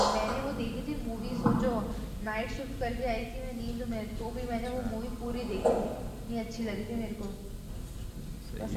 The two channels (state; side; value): identical; both; correlation 1.00